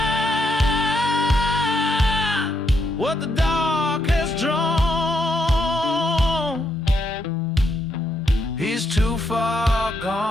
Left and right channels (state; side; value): normal; both; correlation 0.78